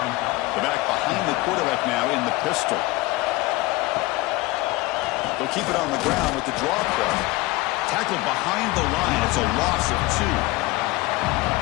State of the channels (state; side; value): quieter; right; 20.8 dB